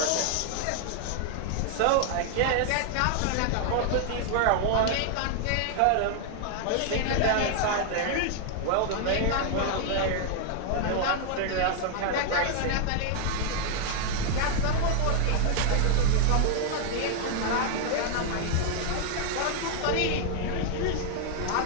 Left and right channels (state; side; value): different; both; correlation 0.00